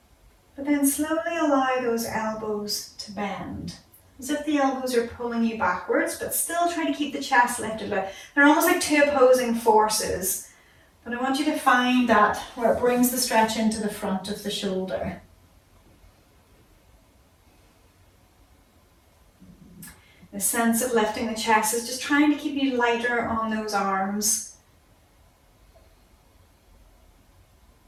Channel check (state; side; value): identical; both; correlation 1.00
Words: But then slowly allow those elbows to bend, as if the elbows are pulling you backwards, but still try to keep the chest lifted. They're almost like two opposing forces. But I want you to find that where it brings the stretch into the front of the shoulder. The sense of lifting the chest is just trying to keep you lighter on those arms.